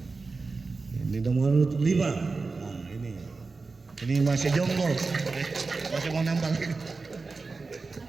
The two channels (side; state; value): left; quieter; 4.0 dB